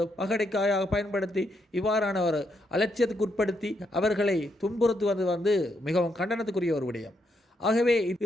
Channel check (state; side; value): normal; both; correlation 0.78